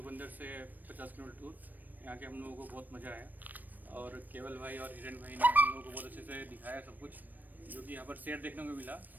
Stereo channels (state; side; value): late; left; 0.087 ms